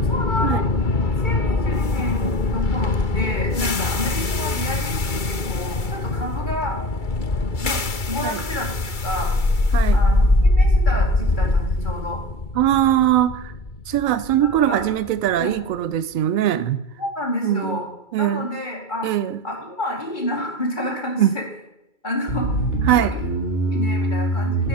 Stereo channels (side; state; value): right; late; 2.3 ms